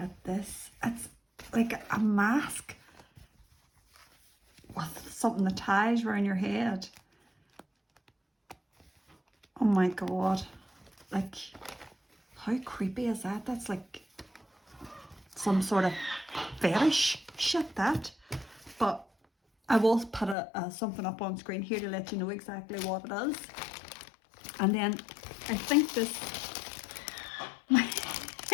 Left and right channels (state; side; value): drops out; right; at 20.4 s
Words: this. It's like a mask with something that ties around your head. Oh my God. Like, how creepy is that? That's like some sort of fetish shit, that. But I will put something up on screen here to let you know exactly what it is. And then I think this